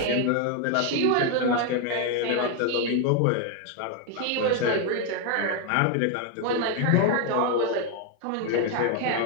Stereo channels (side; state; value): both; different; correlation 0.01